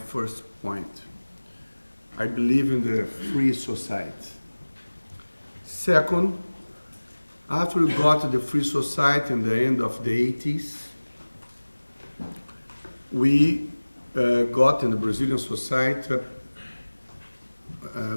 point. I believe in the free society. Second, after we got the free society in the end of the 80s, we got in the Brazilian society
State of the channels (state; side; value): inverted; both; correlation -1.00